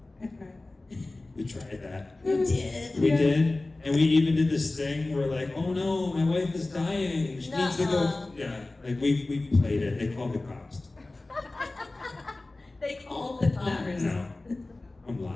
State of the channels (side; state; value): right; quieter; 3.0 dB